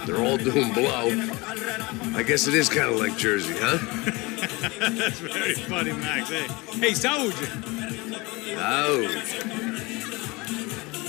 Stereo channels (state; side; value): quieter; right; 24.4 dB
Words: they're all doing blow. I guess it is kind of like Jersey, huh? That's very funny, Max. Hey, Saúde!